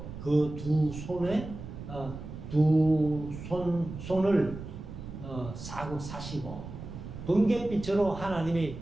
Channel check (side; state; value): right; noise; rumble, 11 dB below the sound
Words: 그 두 손에 손을 사시고 번갯빛으로 하나님이